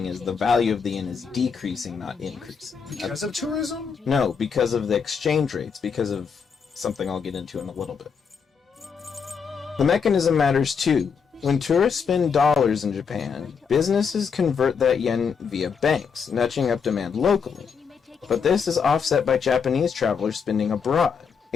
is the value of the yen is decreasing, not increasing. Because of tourism? No, because of the exchange rates, because of something I'll get into in a little bit. The mechanism matters too. When tourists spend dollars in Japan, businesses convert that yen via banks, nudging up demand locally. But this is offset by Japanese travelers spending abroad,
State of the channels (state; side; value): quieter; right; 6.1 dB